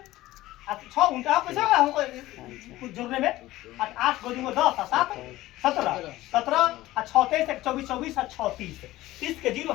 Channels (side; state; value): right; quieter; 16.7 dB